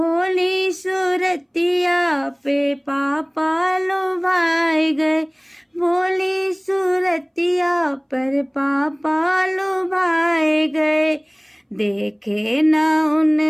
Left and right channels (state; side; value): identical; both; correlation 1.00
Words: सूरतिया पे पापा लुभाए गए। भोली सूरतिया पर पापा लुभाए गए। देखे न